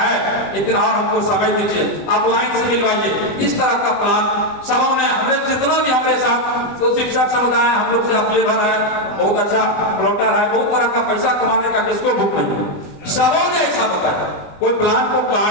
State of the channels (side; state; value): right; late; 20 ms